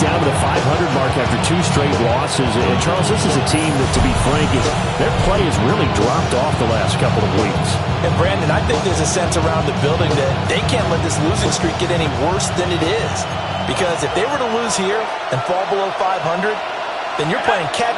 down to the 500 mark after 2 straight losses. And Charles, this is a team that, to be frank, their play has really dropped off the last couple of weeks. And Brandon, I think there's a sense around the building that they can't let this losing streak get any worse than it is. Because if they were to lose here and fall below 500, then you're playing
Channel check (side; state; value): both; identical; correlation 1.00